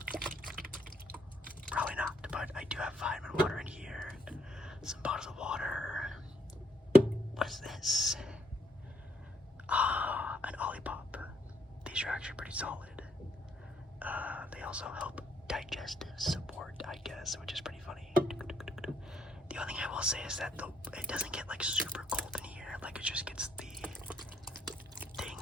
Probably not, but I do have vitamin water in here. Some bottles of water. What is this? An Olipop. These are actually pretty solid. They also help digestive support, I guess, which is pretty funny. The only thing I will say is that it doesn't get super cold in here. It just gets the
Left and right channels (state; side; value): normal; both; correlation 0.72